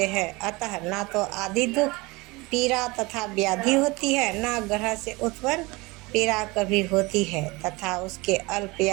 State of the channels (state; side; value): quieter; left; 23.8 dB